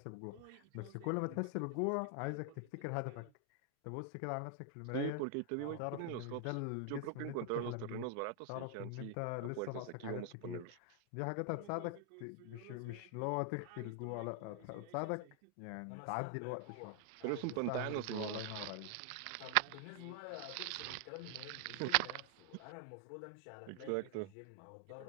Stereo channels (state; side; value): different; both; correlation 0.00